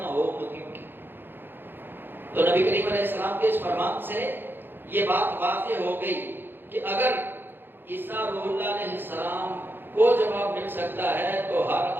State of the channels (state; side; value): late; left; 0.099 ms